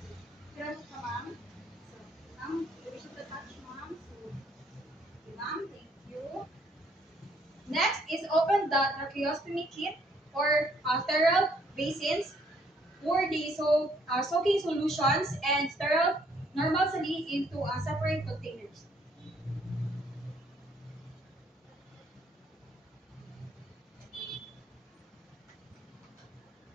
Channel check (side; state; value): both; normal; correlation 0.67